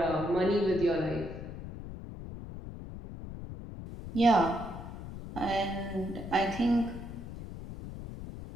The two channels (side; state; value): left; noise; rumble, 10 dB below the sound